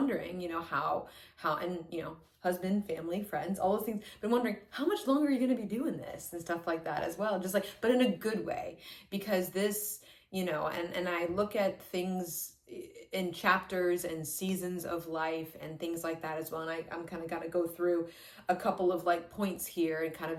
how and husband, family, friends, all those things, been wondering how much longer are you going to be doing this and stuff like that as well, just but in a good way, because this, and I look at things in chapters and seasons of life and things like that as well. And I'm kind of going to go through a couple of points here and kind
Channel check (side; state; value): both; identical; correlation 1.00